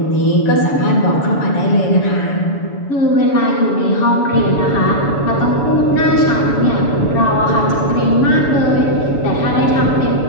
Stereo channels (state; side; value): late; right; 7.1 ms